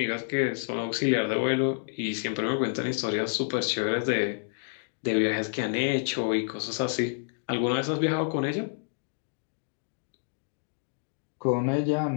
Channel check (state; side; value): silent; right; digital silence